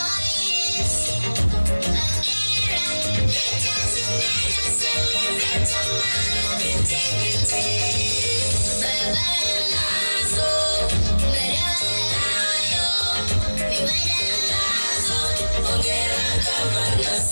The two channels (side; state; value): both; inverted; correlation -1.00